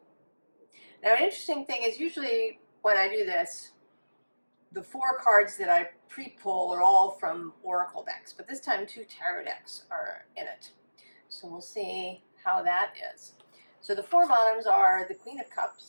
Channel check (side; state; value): both; inverted; correlation -1.00